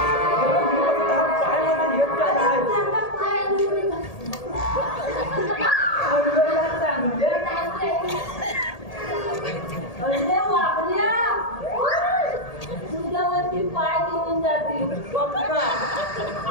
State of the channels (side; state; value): right; late; 1.8 ms